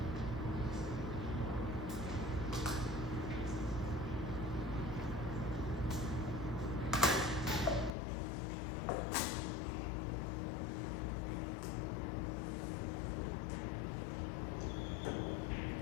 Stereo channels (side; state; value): right; drops out; at 7.9 s